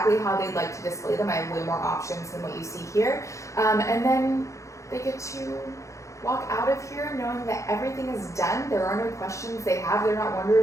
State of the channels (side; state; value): right; late; 0.15 ms